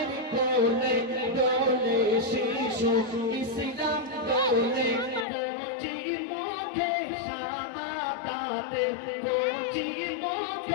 কোলে দোলে শিশু ইসলাম দোলে কচি মুখে শাহাদাতে কচি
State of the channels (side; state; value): right; drops out; at 5.2 s